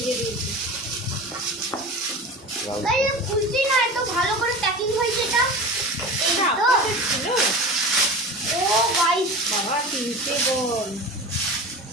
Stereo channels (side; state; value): both; normal; correlation 0.32